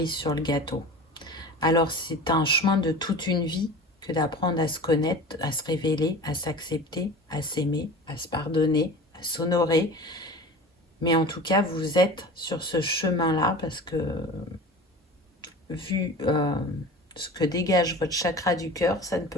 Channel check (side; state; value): both; normal; correlation 0.36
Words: sur le gâteau. Alors c'est un chemin de toute une vie que d'apprendre à se connaître, à se révéler, à s'accepter, à s'aimer, à se pardonner, à s'honorer. Mais en tout cas, vous êtes sur ce chemin-là parce que vu ce que dégage votre chakra du cœur, ça ne